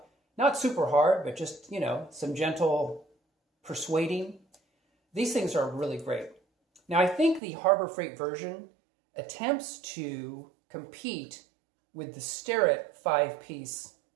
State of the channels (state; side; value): drops out; left; at 7.4 s